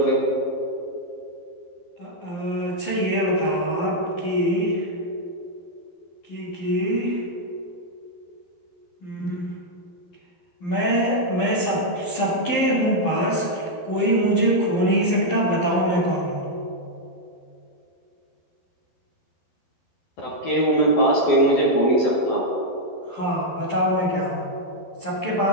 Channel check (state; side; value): late; right; 11 ms